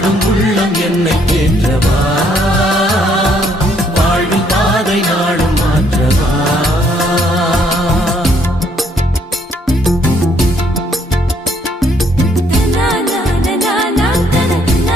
உள்ளம் என்னை தேற்றவா வாழ்வின் பாதை நாளும் மாற்றவா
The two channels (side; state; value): both; normal; correlation 0.68